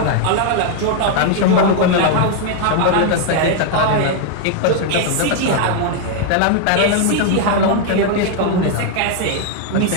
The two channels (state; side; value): different; both; correlation 0.00